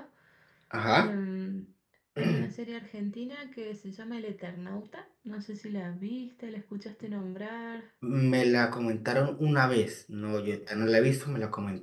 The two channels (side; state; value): both; identical; correlation 1.00